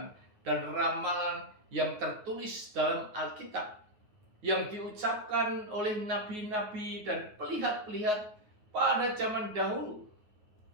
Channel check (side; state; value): left; late; 9.5 ms